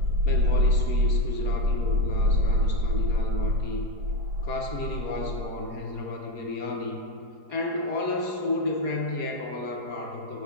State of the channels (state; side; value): late; left; 4.8 ms